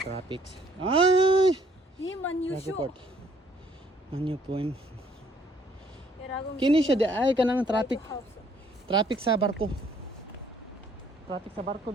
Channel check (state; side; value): normal; both; correlation 0.63